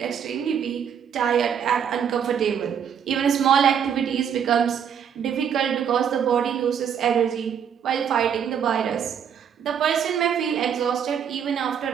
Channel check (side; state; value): left; quieter; 8.1 dB